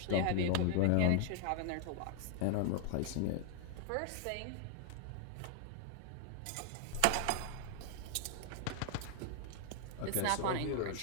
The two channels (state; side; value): different; both; correlation 0.00